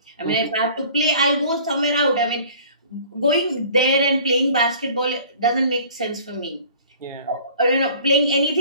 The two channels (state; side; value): inverted; both; correlation -0.49